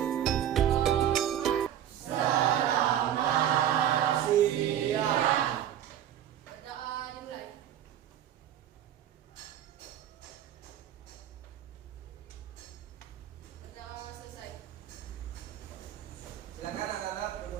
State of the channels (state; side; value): quieter; left; 10.7 dB